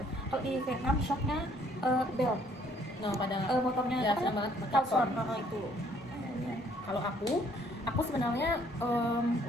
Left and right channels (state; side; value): normal; both; correlation 0.63